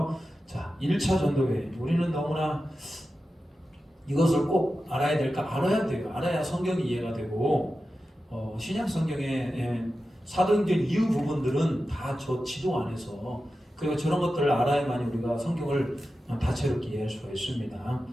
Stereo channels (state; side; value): normal; both; correlation 0.92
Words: 자, 1차 전도회 우리는 너무나 이것을 꼭 알아야 될까? 알아야 돼요. 알아야 성경이 이해가 되고 신약 성경의 사도행전 이후 부분들은 다 저 지도 안에서 그리고 저런 것들을 알아야만 우리가 성경을 다채롭게 이해할 수가 있습니다.